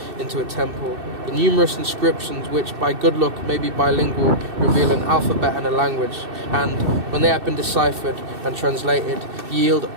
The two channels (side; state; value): left; late; 2.7 ms